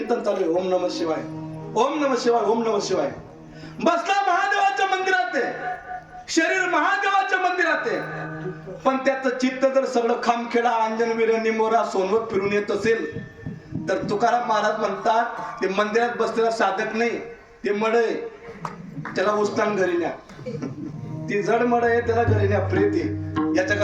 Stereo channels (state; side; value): identical; both; correlation 1.00